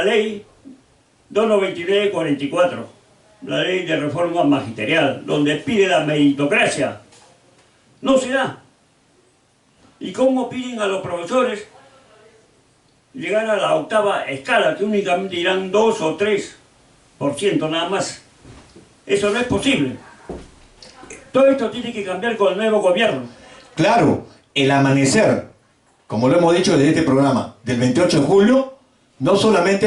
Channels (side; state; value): both; identical; correlation 1.00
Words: ley 299/44, la ley de reforma magisterial, donde pide la meritocracia. No se da. ¿Y cómo piden a los profesores llegar a la 8ª escala, que únicamente irán 2 o 3% nada más? Eso no es posible. Todo esto tiene que cambiar con el nuevo gobierno. Claro, el amanecer, como lo hemos dicho desde este programa, del 28 de julio, no